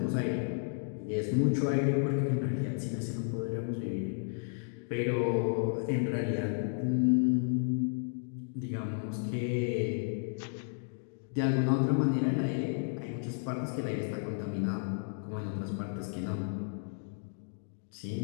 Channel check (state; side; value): silent; right; digital silence